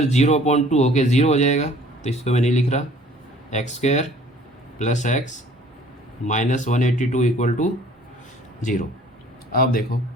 0.2 होके 0 हो जाएगा, तो इसको मैं नहीं लिख रहा, x square plus x minus 182 equal to 0। अब देखो,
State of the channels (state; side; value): normal; both; correlation 0.53